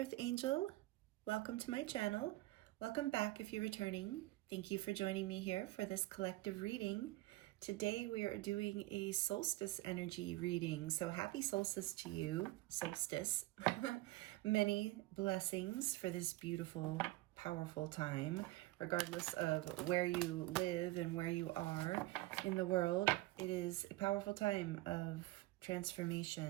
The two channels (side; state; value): left; quieter; 18.8 dB